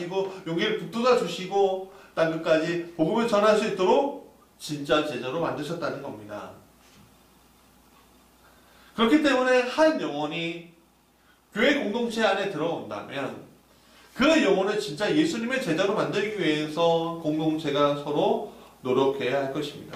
용기를 북돋아 주시고 땅끝까지 복음을 전할 수 있도록 진짜 제자로 만드셨다는 겁니다. 그렇기 때문에 한 영혼이 교회 공동체 안에 들어온다면 그 영혼을 진짜 예수님의 제자로 만들기 위해서 공동체가 서로 노력해야 할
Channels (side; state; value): both; identical; correlation 1.00